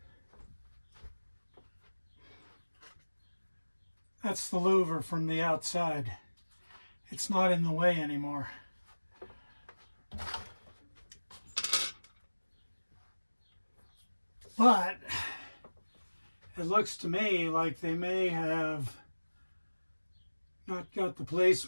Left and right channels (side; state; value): both; inverted; correlation -1.00